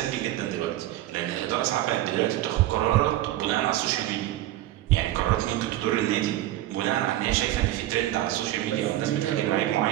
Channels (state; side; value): quieter; left; 14.7 dB